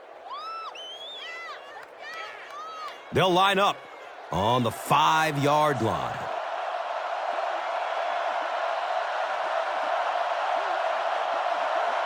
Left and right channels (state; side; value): identical; both; correlation 1.00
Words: They'll line up on the 5-yard line.